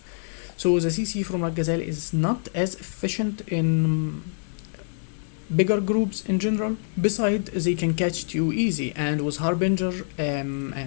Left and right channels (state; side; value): silent; right; digital silence